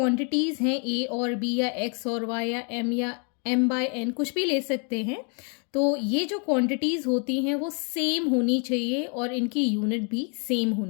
हैं a और b या x और y या m/n कुछ भी ले सकते हैं, तो ये जो क्वांटिटीज़ होती हैं वो सेम होनी चाहिए और इनकी यूनिट भी सेम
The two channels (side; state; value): right; quieter; 38.3 dB